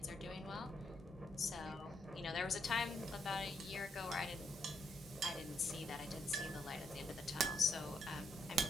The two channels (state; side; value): normal; both; correlation 0.76